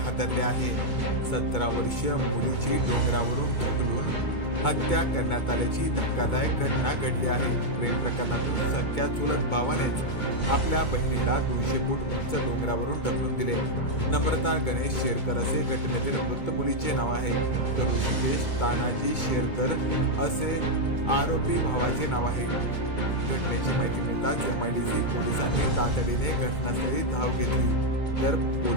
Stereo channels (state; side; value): late; right; 2.2 ms